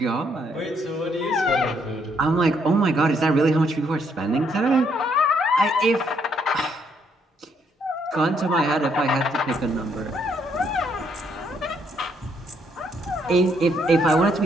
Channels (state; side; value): normal; both; correlation 0.71